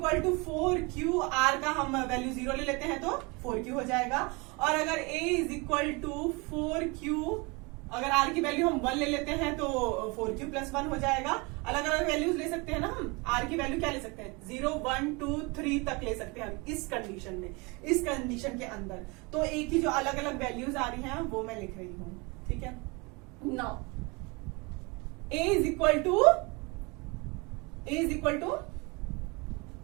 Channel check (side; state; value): left; quieter; 27.7 dB